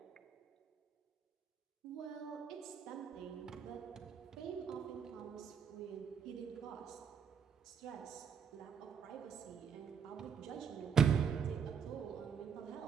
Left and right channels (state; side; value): quieter; left; 7.0 dB